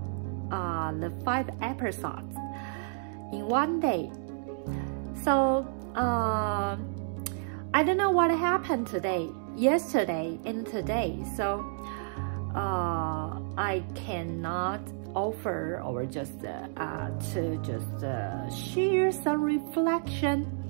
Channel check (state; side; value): silent; left; digital silence